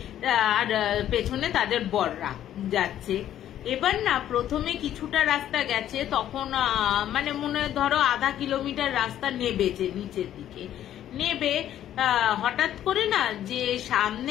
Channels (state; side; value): quieter; right; 11.5 dB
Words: আর পেছনে তাদের বররা যাচ্ছে। এবার না প্রথমে কিছুটা রাস্তা গেছে, তখন মানে মনে ধরো আধা কিলোমিটার রাস্তা নেবেছে নিচের দিকে, নেবে হঠাৎ করে না যে